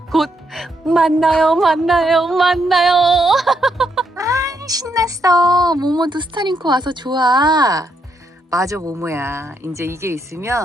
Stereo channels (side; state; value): both; normal; correlation 0.77